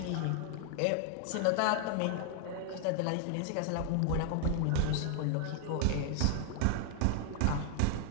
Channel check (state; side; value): different; both; correlation 0.00